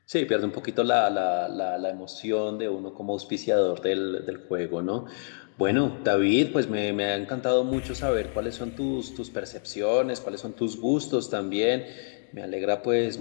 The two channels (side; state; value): right; silent; digital silence